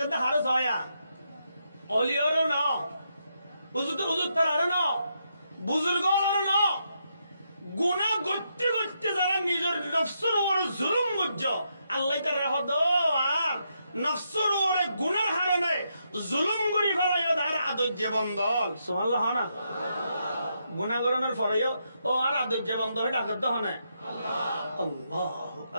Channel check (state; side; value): inverted; both; correlation -0.80